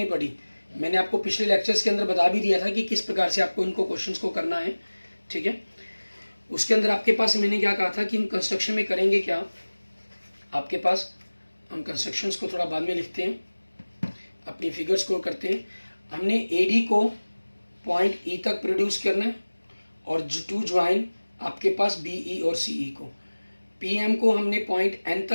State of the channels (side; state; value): both; inverted; correlation -1.00